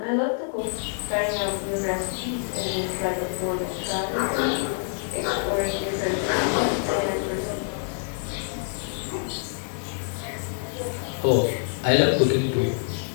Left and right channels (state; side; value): silent; right; digital silence